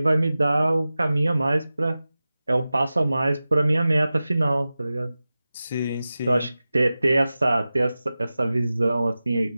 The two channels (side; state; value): both; inverted; correlation -0.95